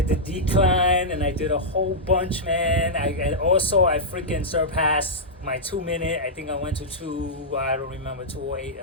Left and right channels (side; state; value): both; normal; correlation -0.10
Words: the decline and I did a whole bunch, man. I freaking surpassed my 2 minute. I think I went to 208 or